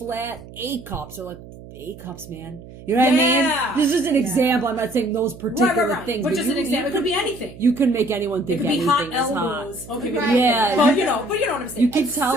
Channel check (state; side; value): noise; right; hum, 17 dB below the sound